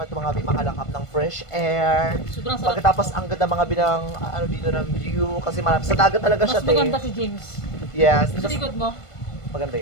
ito mga makalakap ng fresh air. Sobrang sarap. Pagkatapos ang ganda mga binang ano dito ng view kasi marami sa dagat talaga siya. Mas maganda si James. Yes. Sa likod mo. Maganda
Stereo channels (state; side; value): late; right; 1.5 ms